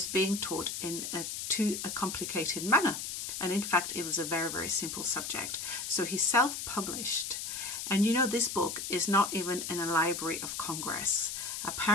being taught in too complicated manner. And in fact, it was a very, very simple subject. So he self-published. And you know, this book is not even in a Library of Congress.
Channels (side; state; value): left; noise; hiss, 5 dB below the sound